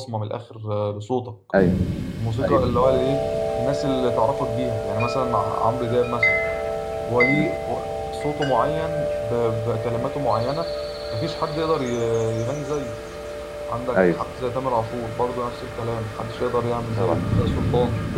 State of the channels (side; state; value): both; identical; correlation 1.00